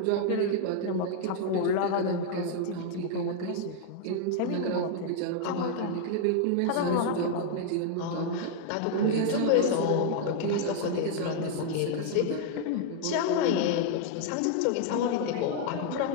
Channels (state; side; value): different; both; correlation 0.00